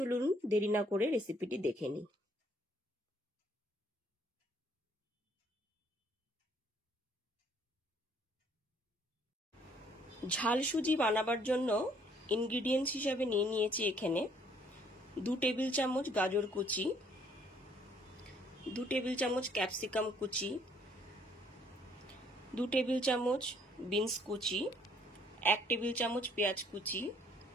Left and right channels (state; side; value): normal; both; correlation 0.63